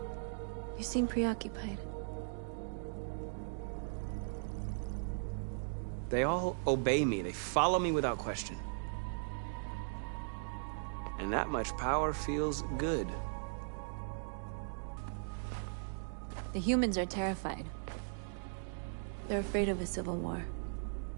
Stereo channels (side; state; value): left; silent; digital silence